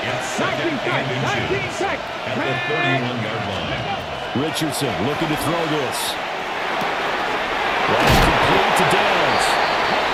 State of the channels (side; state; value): both; identical; correlation 1.00